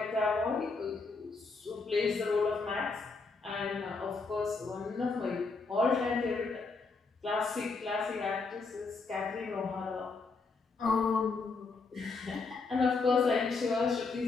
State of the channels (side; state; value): right; quieter; 4.2 dB